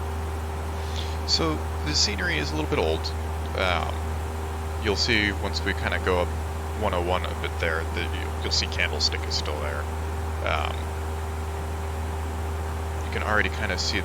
So the scenery is a little bit old. You'll see once we kind of go up 101 a bit there, that you'll see Candlestick is still there. You can already kind of see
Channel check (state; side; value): identical; both; correlation 1.00